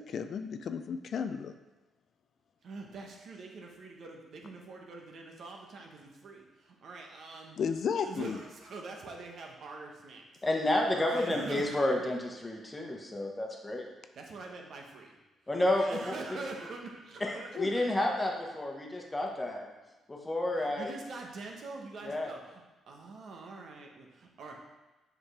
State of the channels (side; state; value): both; normal; correlation 0.85